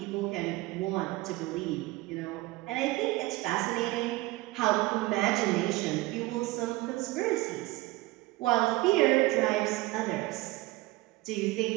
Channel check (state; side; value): quieter; left; 19.9 dB